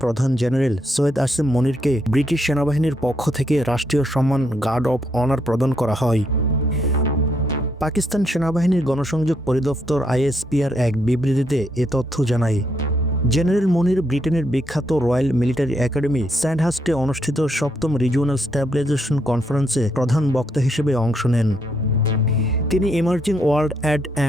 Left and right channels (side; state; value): both; normal; correlation 0.76